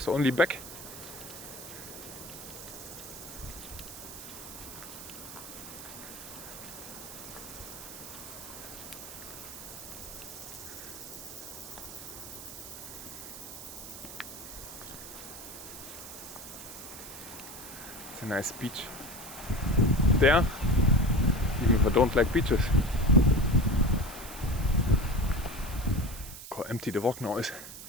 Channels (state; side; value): noise; right; hiss, 12 dB below the sound